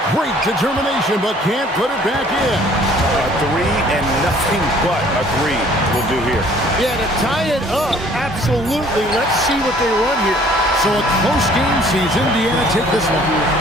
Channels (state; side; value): normal; both; correlation 0.56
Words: Great determination, but can't put it back in. A 3 and nothing but a 3 will do here. Yeah, to tie it up, absolutely. Let's see what they run here. So a close game sees Indiana take this one.